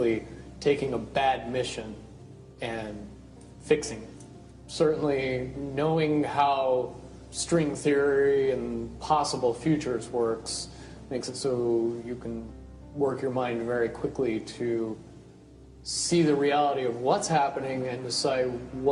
taking a bad mission and fixing it. Certainly knowing how string theory and possible futures works makes it so you can work your mind very quickly to see the reality of what's happening and decide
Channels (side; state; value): both; identical; correlation 1.00